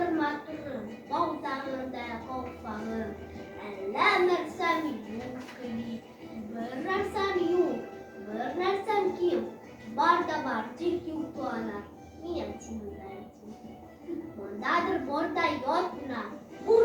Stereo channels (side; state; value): both; identical; correlation 1.00